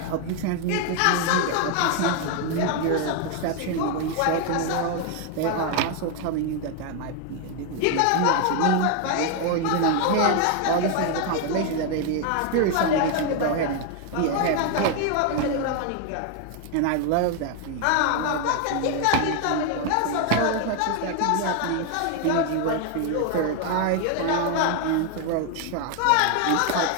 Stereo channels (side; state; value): both; different; correlation 0.01